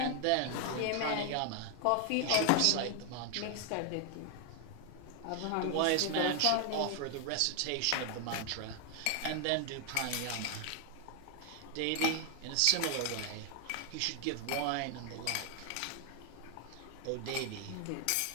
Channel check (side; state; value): both; different; correlation 0.00